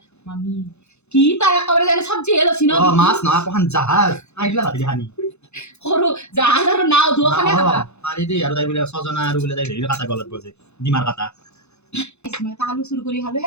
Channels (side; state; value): right; late; 0.81 ms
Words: মামি কি তাই একেবাৰে জানে চব্জি হেলছি ন মাছ নহয় কোন জাহাজ আইলা ভাতি হানি সৰু জাহাজ আৰু নাও দুখানে খাবা পাৰি দেই আৰু তাই বোলে সজনা আৰু বোলে তাই হেৰি কাটা গলত বজে ডিমাৰ কাটা মই আলু চুৰ কৰি খালো